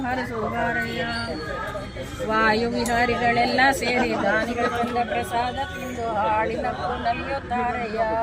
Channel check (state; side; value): identical; both; correlation 1.00